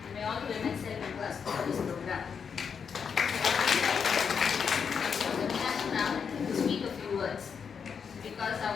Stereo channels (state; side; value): quieter; right; 6.5 dB